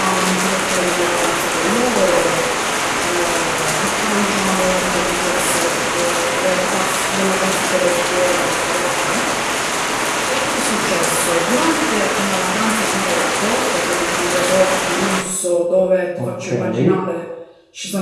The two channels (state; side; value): identical; both; correlation 1.00